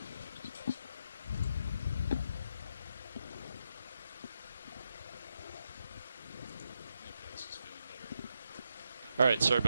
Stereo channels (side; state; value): both; inverted; correlation -0.82